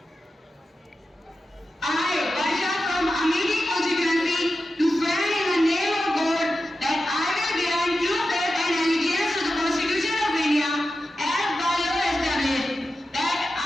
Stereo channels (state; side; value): normal; both; correlation 0.92